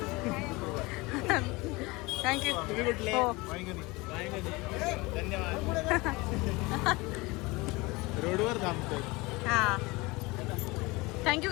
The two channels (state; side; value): quieter; right; 23.5 dB